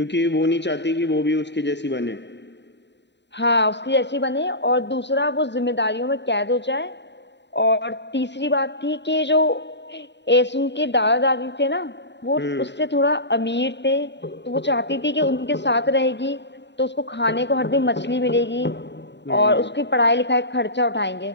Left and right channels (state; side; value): late; right; 0.51 ms